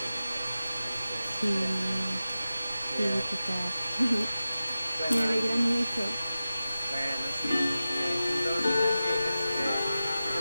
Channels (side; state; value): both; inverted; correlation -0.94